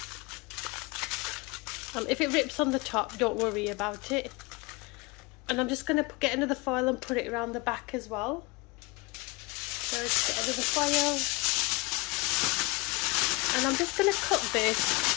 If it rips on the top, don't worry about it. And I'm just going to get another foil and put it around the back as well. So just get another foil. And I'm just going to cook this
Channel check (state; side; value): quieter; right; 25.7 dB